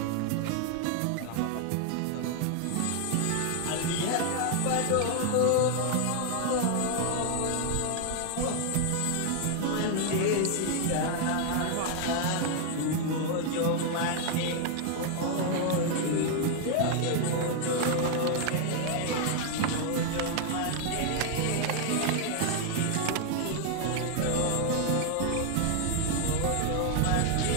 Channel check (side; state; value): both; different; correlation 0.00